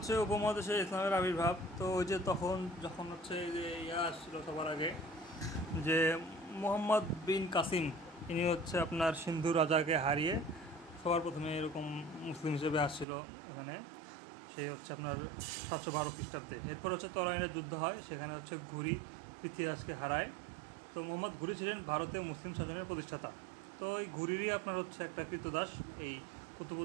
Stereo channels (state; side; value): drops out; left; at 13.1 s